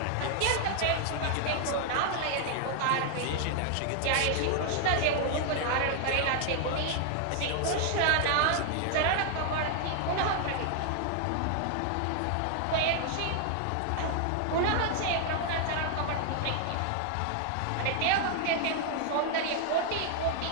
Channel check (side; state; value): both; different; correlation 0.00